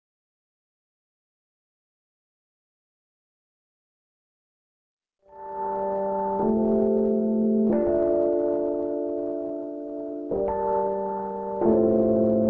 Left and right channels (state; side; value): identical; both; correlation 1.00